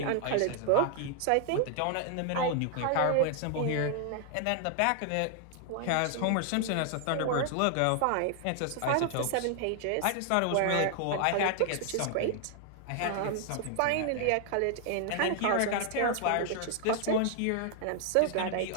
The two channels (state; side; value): different; both; correlation 0.00